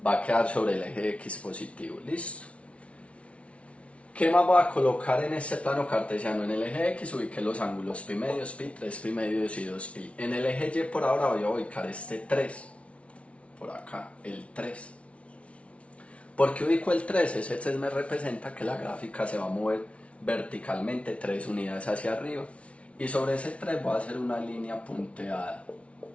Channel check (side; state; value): right; late; 0.062 ms